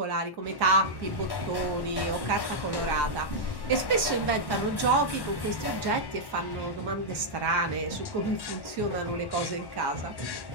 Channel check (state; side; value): late; right; 1.1 ms